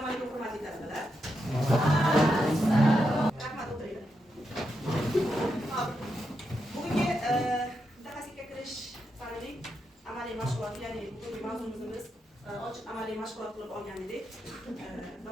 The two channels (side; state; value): both; normal; correlation 0.84